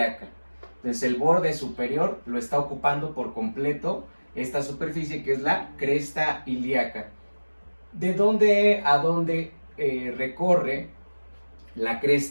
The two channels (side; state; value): both; inverted; correlation -1.00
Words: Entonces el borde superior lo está ocupando por completo esta superficie que es la cresta ilíaca. ¿De dónde a dónde recorre la